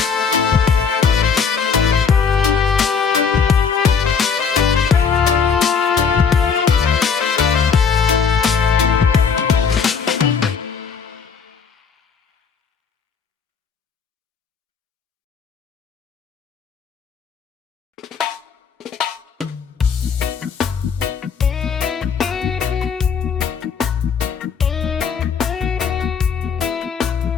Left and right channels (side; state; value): right; quieter; 6.1 dB